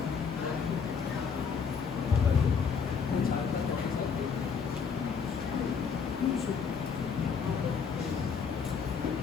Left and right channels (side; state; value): right; quieter; 6.1 dB